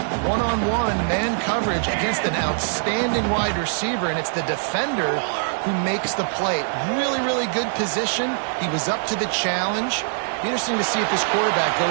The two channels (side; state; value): left; silent; digital silence